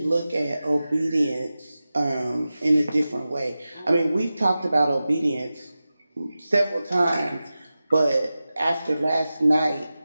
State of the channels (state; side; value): inverted; both; correlation -0.94